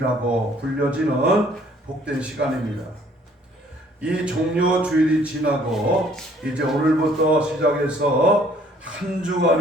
불려지는 복된 시간입니다. 이 종려주일이 지나고 이제 오늘부터 시작해서 한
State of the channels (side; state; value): both; normal; correlation 0.60